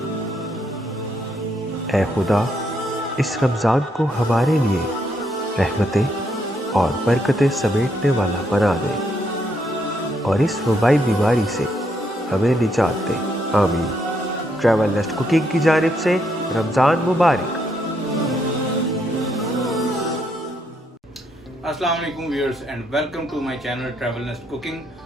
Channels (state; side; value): normal; both; correlation 0.75